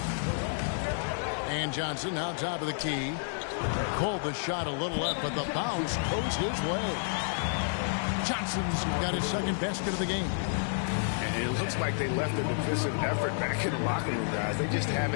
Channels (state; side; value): silent; right; 58 dB below the other